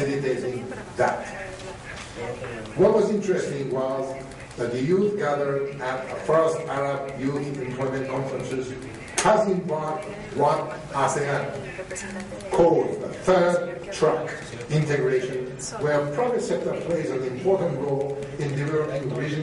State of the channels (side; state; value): both; identical; correlation 1.00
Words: that. What was interesting was that the youth gathered at the first Arab Youth Employment Conferences has embarked what ASEAN called the third track integration, where private sector plays an important role in developing